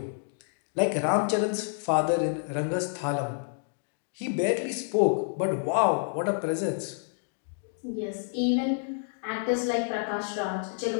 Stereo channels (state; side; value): silent; right; digital silence